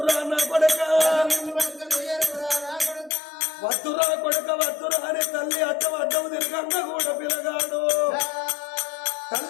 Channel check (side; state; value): right; drops out; at 3.1 s